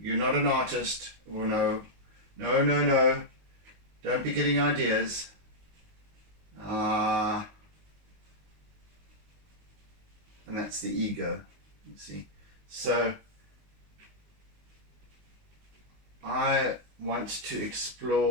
not an artist. Oh no, don't be getting ideas. And that's the ego, you see. So I want to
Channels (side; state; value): left; late; 19 ms